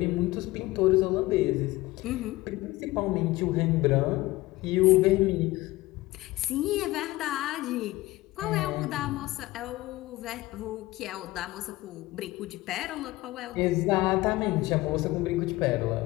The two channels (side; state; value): right; quieter; 19.0 dB